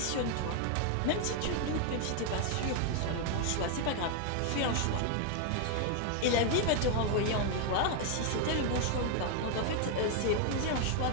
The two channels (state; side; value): different; both; correlation 0.00